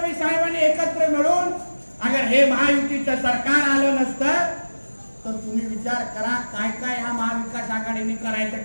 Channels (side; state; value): both; inverted; correlation -1.00